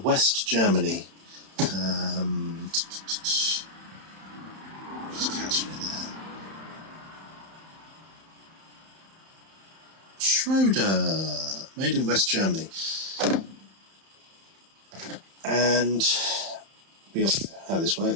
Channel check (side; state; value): left; late; 31 ms